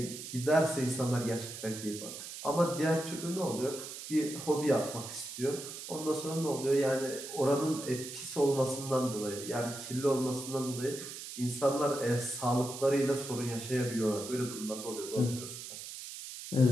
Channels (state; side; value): noise; right; hiss, 10 dB below the sound